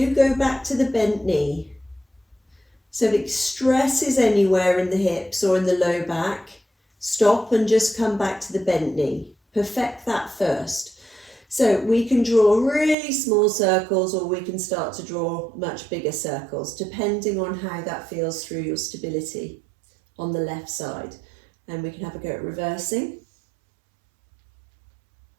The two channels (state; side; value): drops out; left; at 13.0 s